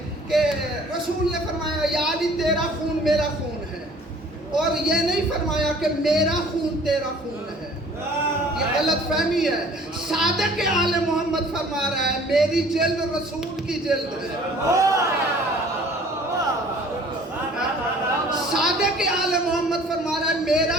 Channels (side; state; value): both; normal; correlation 0.52